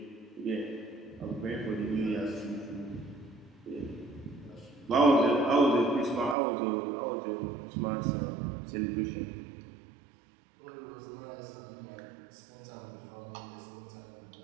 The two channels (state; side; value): drops out; left; at 6.4 s